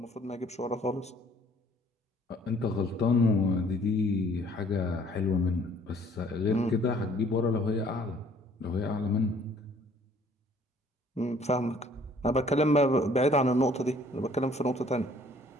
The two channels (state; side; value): normal; both; correlation 0.58